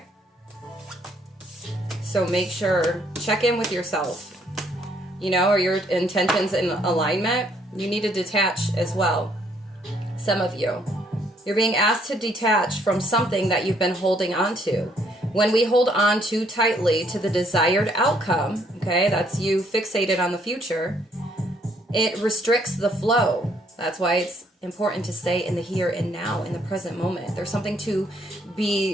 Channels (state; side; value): normal; both; correlation 0.67